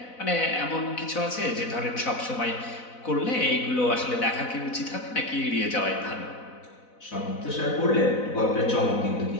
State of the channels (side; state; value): right; late; 4.0 ms